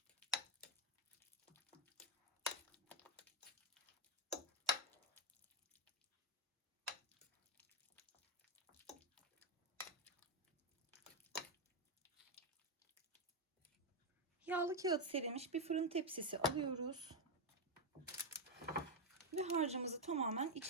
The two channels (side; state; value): both; normal; correlation 0.04